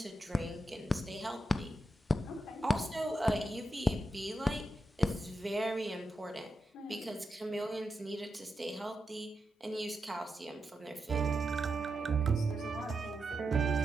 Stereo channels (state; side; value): normal; both; correlation 0.87